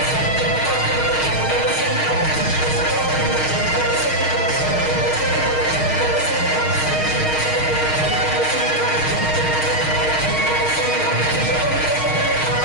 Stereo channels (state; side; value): late; right; 6.4 ms